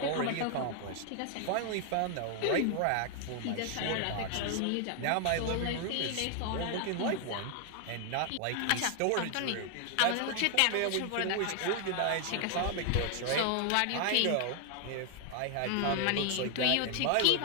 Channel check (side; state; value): both; different; correlation 0.00